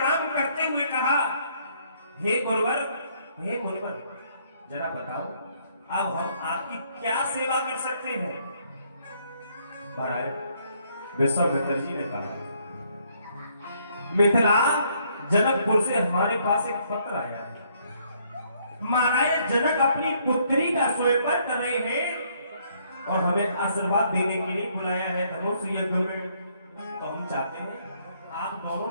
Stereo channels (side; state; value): both; inverted; correlation -0.68